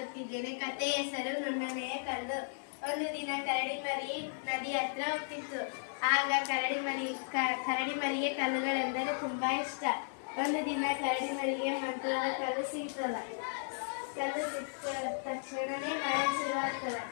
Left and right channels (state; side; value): silent; right; digital silence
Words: ಕಥೆಯ ಹೆಸರು ನುಣ್ಣನೆಯ ಕಲ್ಲು. ಒಂದು ದಿನ ಕರಡಿ ಮರಿ ನದಿ ಹತ್ರ ಹೋಗ್ತಿತ್ತು. ಆಗ ಕರಡಿ ಮರಿಗೆ ಕಲ್ಲುಗಳೆಂದರೆ ತುಂಬಾ ಇಷ್ಟ. ಒಂದು ದಿನ ಕರಡಿ ಮರಿಗೆ ಮಂತ್ರದ ಕಲ್ಲು ಸಿಗ್ತದ. ಕಲ್ಲು ಸಿಕ್ಕ ತಕ್ಷಣನೇ ಮಳೆ ಶುರುವಾಗ್ತದ.